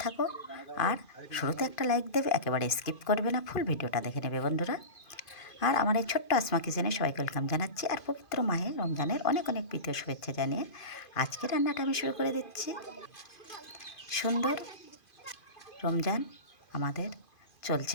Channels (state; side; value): late; right; 2.5 ms